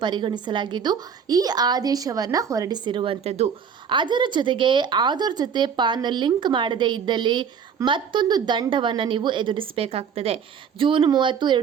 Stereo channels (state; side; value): quieter; left; 7.1 dB